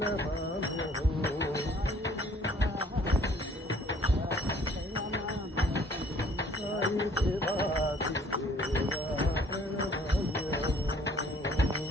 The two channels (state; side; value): normal; both; correlation 0.57